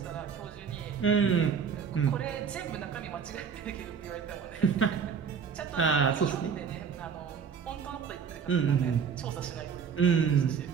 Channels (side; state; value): left; quieter; 6.6 dB